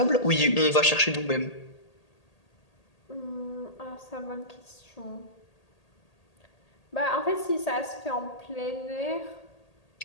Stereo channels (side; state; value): right; late; 1.8 ms